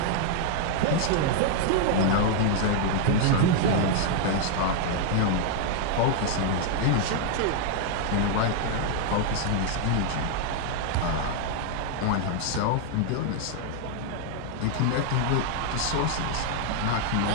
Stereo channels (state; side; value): different; both; correlation 0.00